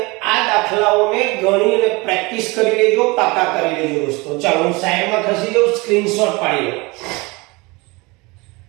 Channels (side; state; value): left; quieter; 25.2 dB